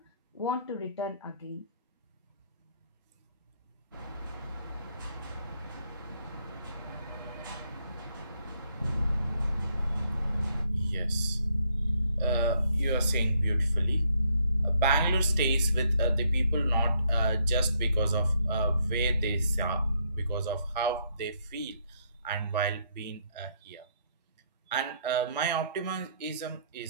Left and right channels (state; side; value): inverted; both; correlation -0.71